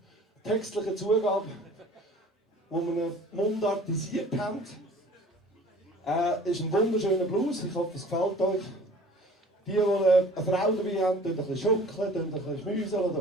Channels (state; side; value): normal; both; correlation 0.48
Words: textlichen Zugabe, wo wir ihn mundartisiert haben. Ist ein wunderschöner Blues, ich hoffe es gefällt euch. Die eine Frau dabei haben, tun ein bisschen schunkeln, tun ein bisschen schmüseln oder